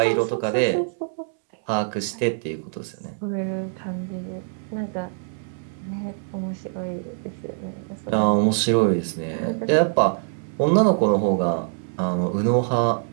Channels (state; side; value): silent; left; digital silence